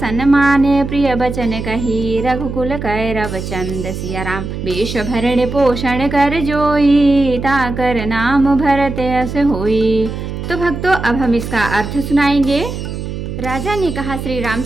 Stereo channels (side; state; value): right; noise; hum, 6 dB below the sound